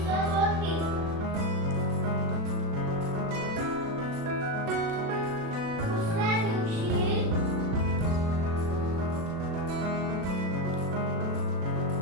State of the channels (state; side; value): late; left; 37 ms